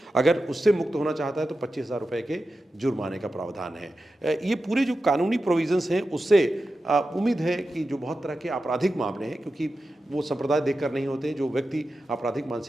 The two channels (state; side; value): normal; both; correlation 0.92